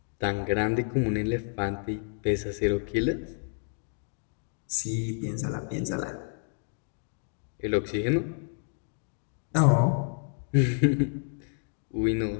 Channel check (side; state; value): right; silent; 58 dB below the other